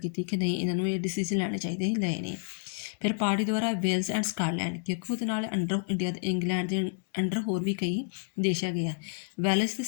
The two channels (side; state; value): right; silent; digital silence